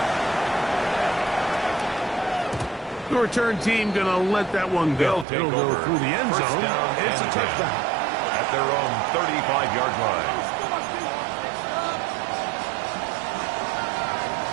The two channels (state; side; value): drops out; left; at 5.2 s